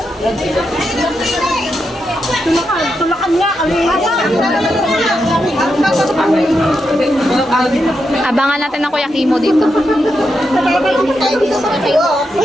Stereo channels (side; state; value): both; normal; correlation 0.85